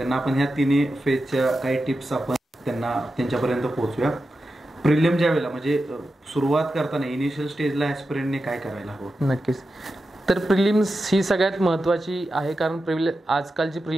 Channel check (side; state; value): both; normal; correlation 0.91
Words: आपण ह्या 3 फेजच्या काही टिप्स आपण त्यांच्यापर्यंत पोहोचूया. प्रिलिम ज्या वेळेला म्हणजे सुरुवात करताना इनिशियल स्टेजला ॲस्पिरंटने काय करायला हवं? नक्कीच, तर प्रिलिम्स ही सगळ्यात महत्त्वाची आहे, कारण आजकालची